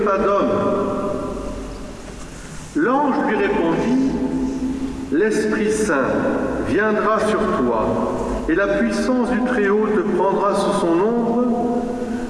d'homme ?» L'ange lui répondit : « L'Esprit Saint viendra sur toi, et la puissance du Très-Haut te prendra sous son ombre.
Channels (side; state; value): both; identical; correlation 1.00